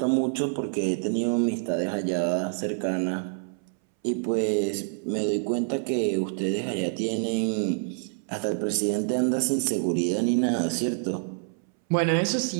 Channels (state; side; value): silent; left; 60 dB below the other